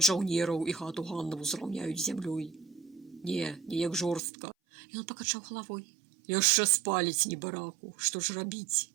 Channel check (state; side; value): drops out; left; at 4.2 s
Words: жаўнераў, і хату Ганнаву зраўняюць з зямлёй. Не, неяк жорстка. Ён пакачаў галавой. Яшчэ спаліць небараку, што ж рабіць?